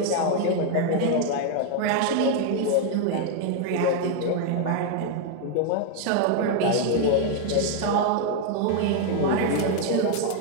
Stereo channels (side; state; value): both; different; correlation 0.00